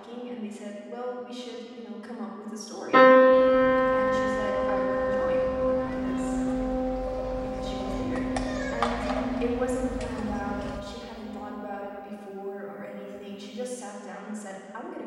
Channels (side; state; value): both; identical; correlation 1.00